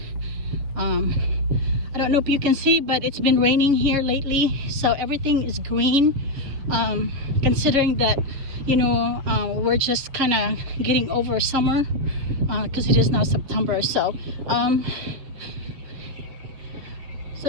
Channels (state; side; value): late; left; 7.2 ms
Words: I don't know if you can see, but it's been raining here lately, so everything is green, considering that we're just kind of getting over summer, because it is now September. So